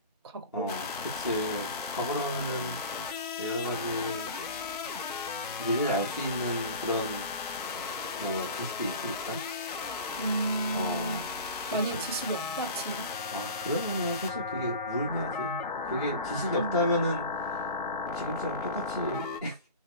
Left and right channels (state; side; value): inverted; both; correlation -0.35